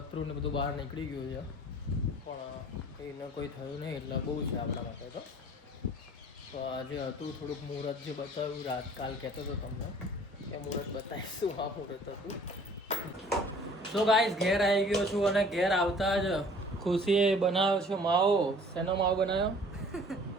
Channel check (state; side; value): normal; both; correlation 0.51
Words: ને બધું બહાર નીકળી ગયું છે, પણ એને કોઈ થયું નહીં એટલે બહુ છે આપણા માટે. તો આજે હતું થોડુંક મુહૂર્ત જે બતાવ્યું રાત કાલ કહેતો હતો તમને કે મુહૂર્ત બતાવીશું. આ મુહૂર્ત હતું. તો ગાઈસ ઘેર આવી ગયો છું અને ઘેર આવતા જ ખુશીએ બનાવ્યો છે માવો. શેનો માવો બનાવ્યો?